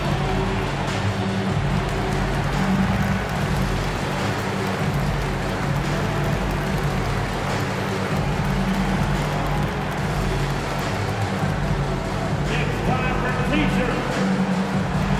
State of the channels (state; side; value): identical; both; correlation 1.00